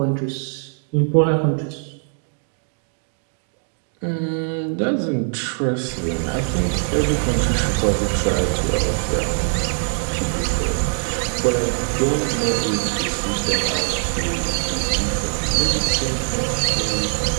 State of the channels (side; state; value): left; silent; 55 dB below the other